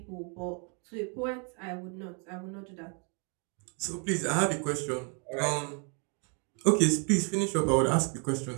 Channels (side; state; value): left; quieter; 38.5 dB